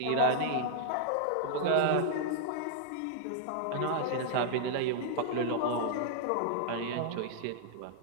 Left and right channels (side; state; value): both; different; correlation -0.01